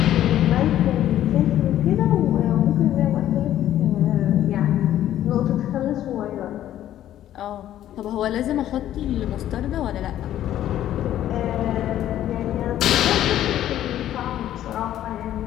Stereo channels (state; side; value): quieter; right; 12.2 dB